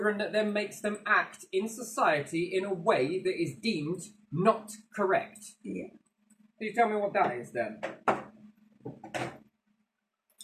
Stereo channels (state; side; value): identical; both; correlation 1.00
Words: that then makes them act in society in a way that is deemed not correct. Yeah. Can you tell me what that is then?